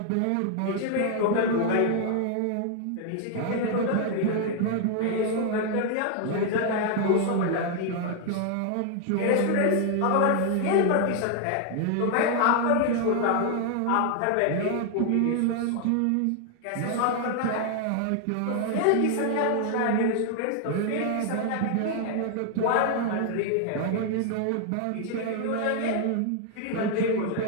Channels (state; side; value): different; both; correlation 0.00